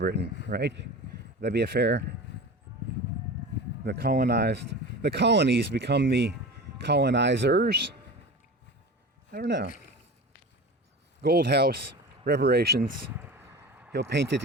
right? That'd be a fair. The colonies become the colonizers. I don't know. Gold house, reparations. He'll paint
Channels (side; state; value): both; normal; correlation 0.32